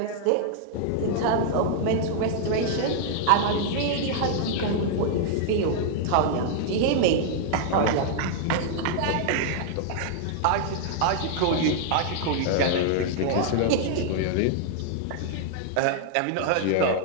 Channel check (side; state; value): both; different; correlation -0.01